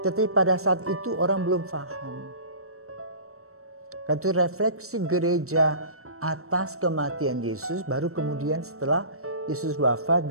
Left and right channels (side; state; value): left; late; 0.63 ms